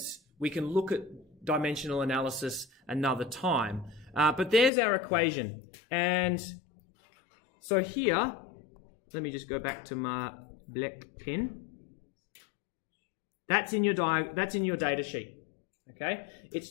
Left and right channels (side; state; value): right; drops out; at 4.7 s